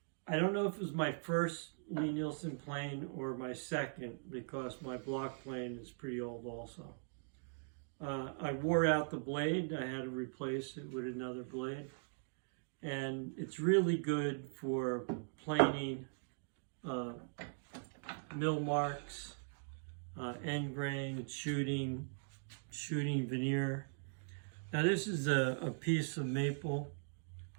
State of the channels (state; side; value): silent; left; digital silence